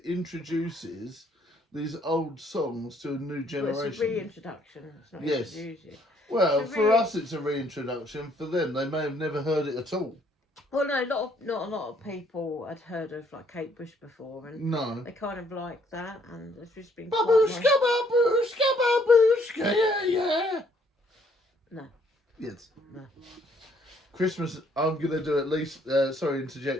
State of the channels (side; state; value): both; normal; correlation 0.66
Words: introduces these old songs to a new generation. Well, it's a reintroduction. It's not introducing. Well, for us it's a reintroduction. For them, they may have never heard it at all. Well, no, not a lot of people had heard of like Kate Bush before, and no, they kind of like that, and it's just been babushka, babushka, babushka, yeah. No. Yes. No. Christmas, I'm going to do at least, sorry,